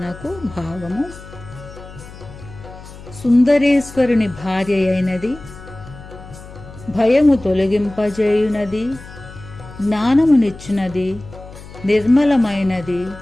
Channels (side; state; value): left; noise; hum, 17 dB below the sound